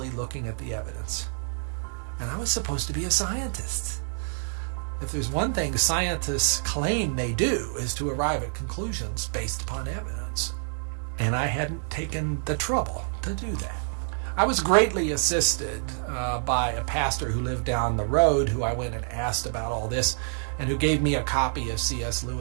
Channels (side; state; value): left; silent; digital silence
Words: looking at the evidence. And I was supposed to be a scientist. If there's one thing scientists claim they do is to arrive at conclusions based upon evidence. And I hadn't taken the trouble to do that. I was greatly assisted by a pastor who lived down the road, who I went and asked about all this, and who gave me a copy of C.S.